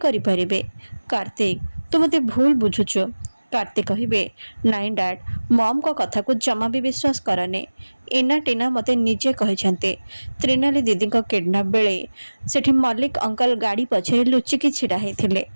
କରିପାରିବେ? କାର୍ତ୍ତିକ ତୁ ମୋତେ ଭୁଲ ବୁଝୁଛୁ। କାର୍ତ୍ତିକ କହିବେ ନାଇଁ ଡାଡ୍, ମମ୍ଙ୍କ କଥାକୁ ଜମା ବି ବିଶ୍ୱାସ କରନି। ଇନା ଟିନା ମୋତେ ନିଜେ କହିଛନ୍ତି ତ୍ରିନାଲି ଦିଦିଙ୍କ କିଡନାପ୍ ବେଳେ ସେଠି ମଲ୍ଲିକ ଅଙ୍କଲ ଗାଡ଼ି ପଛରେ ଲୁଚିକି ଛିଡ଼ା ହେଇଥିଲେ।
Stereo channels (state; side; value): inverted; both; correlation -1.00